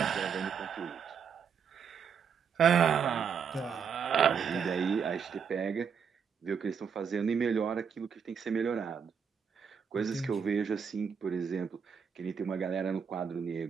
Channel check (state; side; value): quieter; left; 6.8 dB